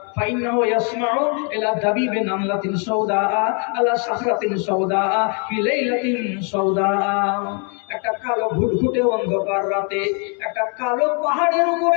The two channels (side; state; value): right; quieter; 38.2 dB